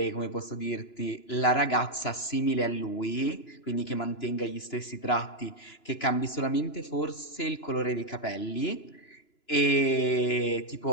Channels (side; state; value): right; late; 2.9 ms